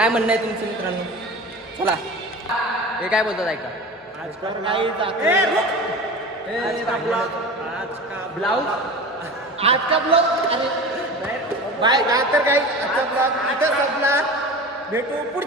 म्हणणं आहे तुमचं मित्रांनो. चला हे काय बोलतात ऐका. आजकाल काही ब्लाऊज आजचा ब्लॉग अरे बाय काय तर काही आजचा ब्लॉग इथं संपला. भेटू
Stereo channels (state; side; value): normal; both; correlation 0.33